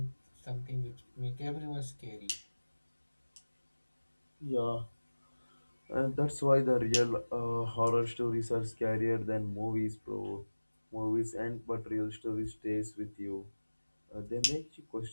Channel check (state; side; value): inverted; both; correlation -1.00